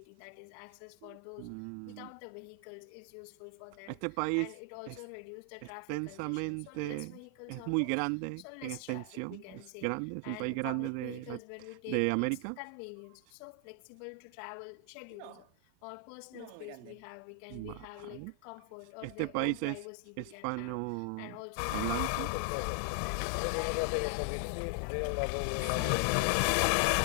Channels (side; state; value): both; different; correlation 0.00